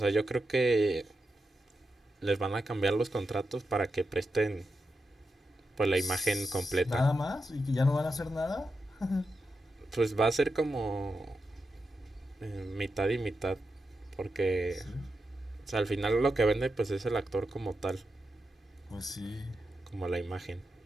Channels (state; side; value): normal; both; correlation 0.88